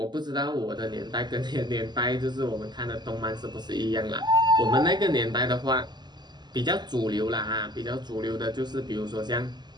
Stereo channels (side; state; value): left; late; 0.21 ms